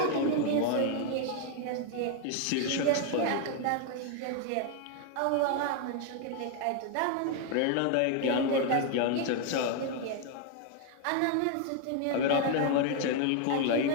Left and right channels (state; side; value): different; both; correlation 0.01